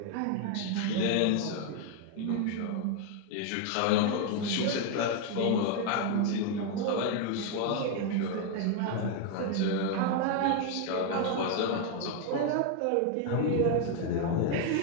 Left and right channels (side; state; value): both; different; correlation 0.01